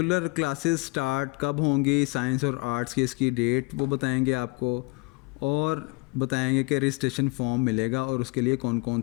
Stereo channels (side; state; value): right; quieter; 28.0 dB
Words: क्लासेस स्टार्ट कब होंगी, साइंस और आर्ट्स की इसकी डेट वो बताएंगे आपको, और बताएंगे कि रजिस्ट्रेशन फॉर्म मिलेगा और उसके लिए कौन कौन